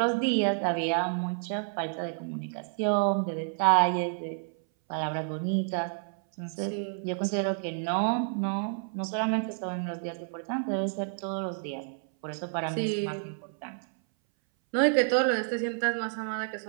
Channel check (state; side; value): silent; left; 58 dB below the other